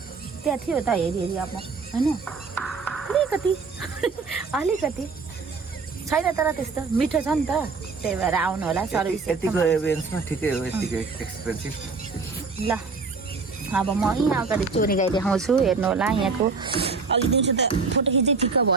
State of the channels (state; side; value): quieter; left; 4.5 dB